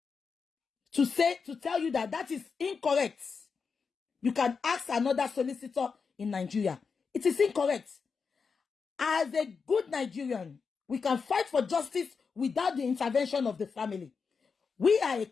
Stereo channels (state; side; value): quieter; right; 5.4 dB